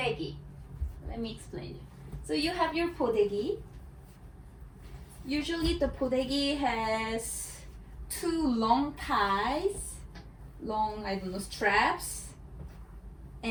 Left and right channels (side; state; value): both; identical; correlation 1.00